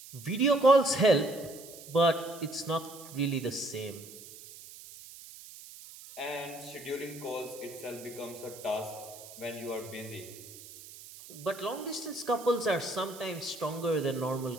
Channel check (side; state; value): right; noise; hiss, 16 dB below the sound